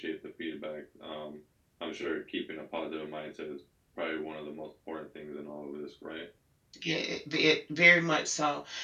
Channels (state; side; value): identical; both; correlation 1.00